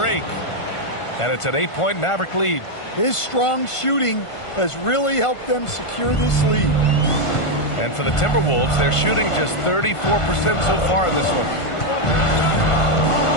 And it's an 8-point Maverick lead. His strong shooting has really helped them secure this lead. And for the Timberwolves, they're shooting just 34% so far in this one.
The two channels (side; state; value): right; late; 1.5 ms